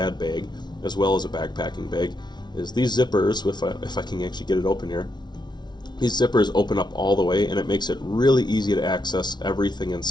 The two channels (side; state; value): right; late; 0.20 ms